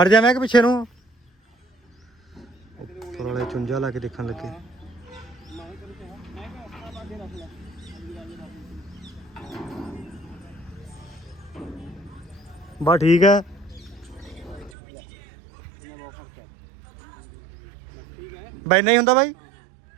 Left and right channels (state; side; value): drops out; left; at 14.7 s